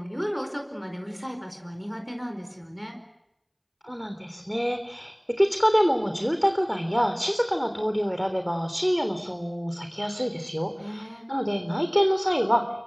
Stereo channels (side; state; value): both; identical; correlation 1.00